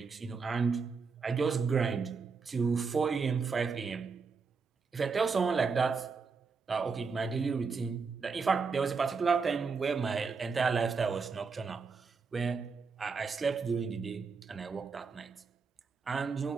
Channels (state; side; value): quieter; left; 5.0 dB